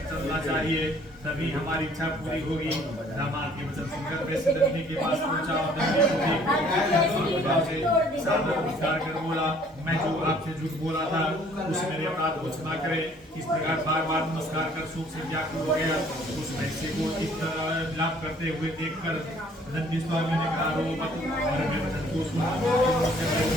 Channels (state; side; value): normal; both; correlation 0.58